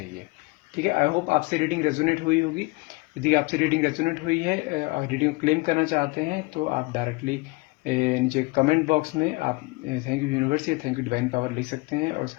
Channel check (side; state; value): right; quieter; 24.7 dB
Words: ठीक है, आई होप आपसे रीडिंग रेजोनेट हुई होगी। यदि आपसे रीडिंग रेजोनेट हुई है और रीडिंग क्लेम करना चाहते हैं तो आप डायरेक्टली नीचे कमेंट बॉक्स में आप थैंक यू यूनिवर्स या थैंक यू डिवाइन पावर लिख सकते हैं। और